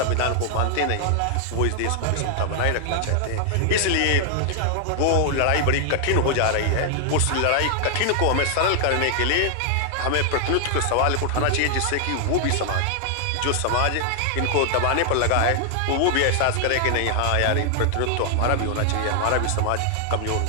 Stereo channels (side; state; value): both; different; correlation 0.00